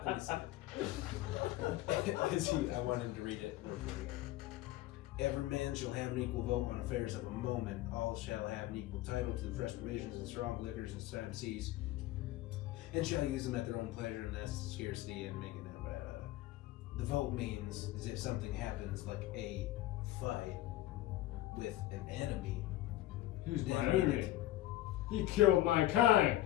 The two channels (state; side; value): quieter; right; 15.5 dB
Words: me see it. I want him to read it. Every man shall have an equal vote on affairs of a moment. All shall have an equal title to the fresh provisions and strong liquors and time seas, and shall use them at their own pleasure, and that's scarcity and making it. The vote means is if something happens like a fight with an enemy. He's my enemy. He killed my kind.